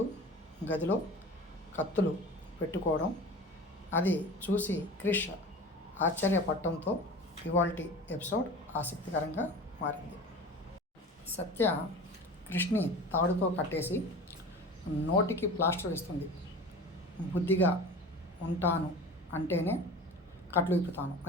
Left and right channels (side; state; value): both; normal; correlation 0.36